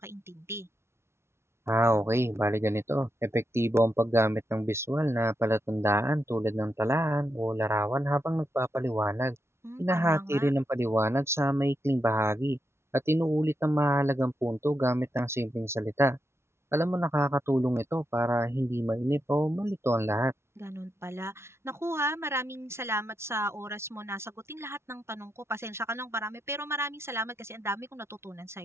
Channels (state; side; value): late; left; 0.12 ms